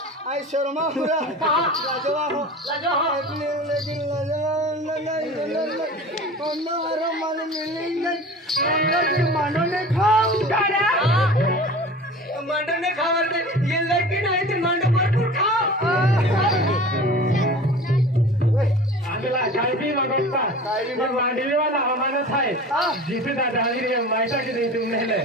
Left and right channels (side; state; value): both; normal; correlation 0.38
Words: आई शर्मा पूरा लाजवाब हो लेकिन लाजवाब मालूम मिलेंगे मानो ने खाओ मांडो ने खावर दे ये लड़की नहीं तो मांडो भरपूर खाओ आंधला काय बी बघता ये मांडवी वाला हमारा था जिसे दादा रे मायटा के नहीं तुमने ले